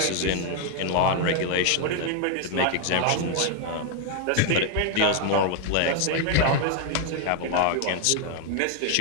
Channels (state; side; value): different; both; correlation 0.00